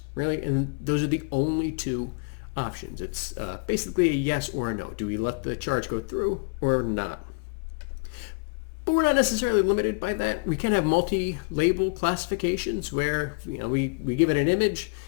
really? And those are the only two options. It's basically a yes or a no. Do we let the charge go through or not? But we're not necessarily limited by that. We can have multi-label classifications where we give it an image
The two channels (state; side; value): quieter; right; 33.7 dB